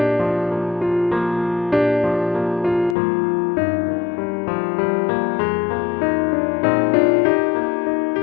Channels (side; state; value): right; drops out; at 3.0 s